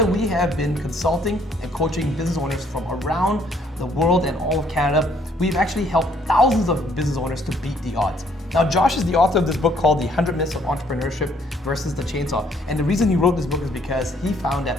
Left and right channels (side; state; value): both; normal; correlation 0.65